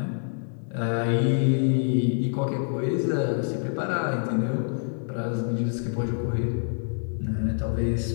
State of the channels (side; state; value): right; silent; 61 dB below the other